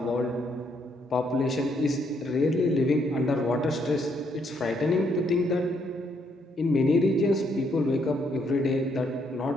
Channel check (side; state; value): both; normal; correlation 0.72